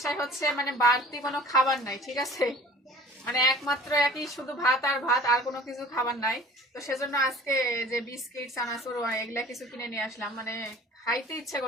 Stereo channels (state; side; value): normal; both; correlation 0.46